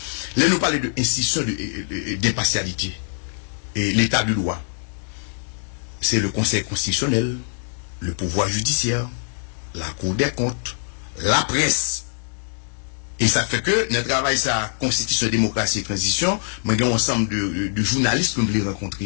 Là nous parler de institution d'impartialité et l'état de loi. C'est le Conseil constitutionnel, le pouvoir judiciaire, la Cour des comptes, la presse. Et ça fait que notre travail ça constitution démocratie et transition, mais il y a un ensemble de journalistes que nous voulons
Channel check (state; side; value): silent; right; digital silence